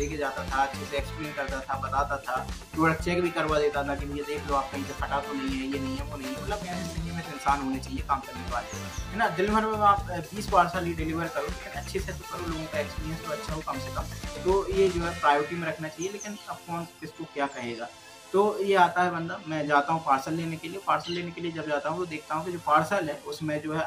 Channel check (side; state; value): both; identical; correlation 1.00